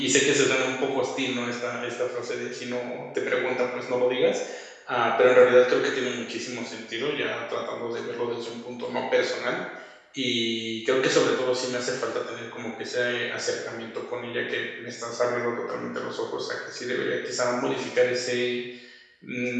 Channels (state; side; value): identical; both; correlation 1.00